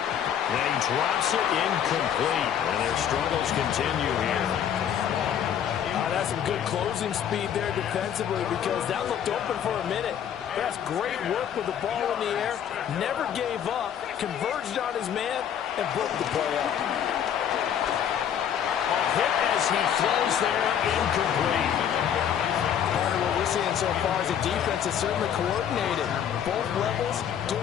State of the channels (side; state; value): right; quieter; 9.1 dB